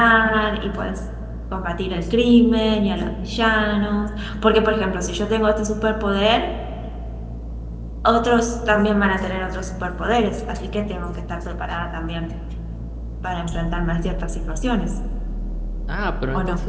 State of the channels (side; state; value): both; identical; correlation 1.00